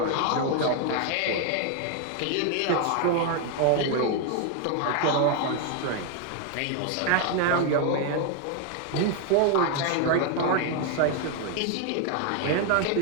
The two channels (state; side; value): different; both; correlation 0.00